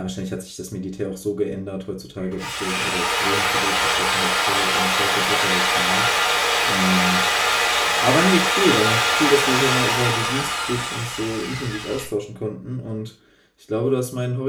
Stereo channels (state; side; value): identical; both; correlation 1.00